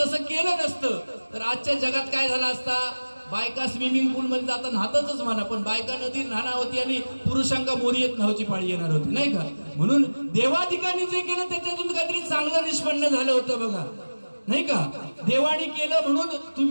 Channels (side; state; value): both; inverted; correlation -1.00